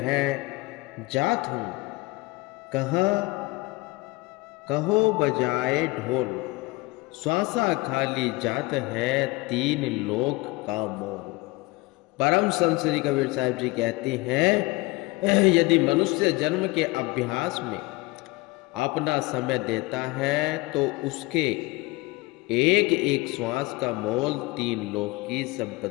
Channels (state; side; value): quieter; right; 23.2 dB